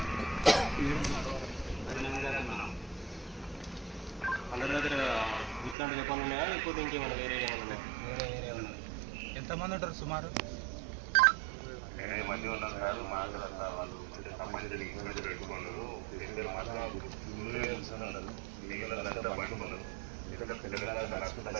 అందరి దగ్గర ఇట్లాంటి చెప్పాలి ఉన్నాయా లేకపోతే ఇంకేమైనా వేరే ఏమైనా ఉన్నాయా? ఎంతమంది ఉంటారు సుమారు?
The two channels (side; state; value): left; drops out; at 5.8 s